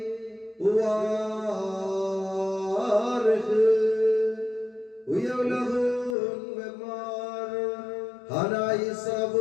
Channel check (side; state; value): right; drops out; at 6.2 s